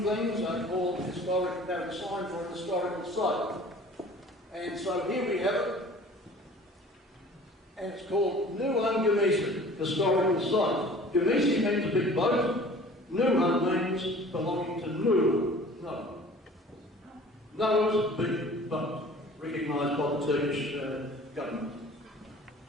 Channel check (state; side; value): normal; both; correlation 0.47